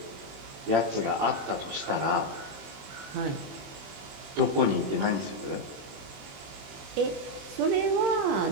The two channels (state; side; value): late; left; 20 ms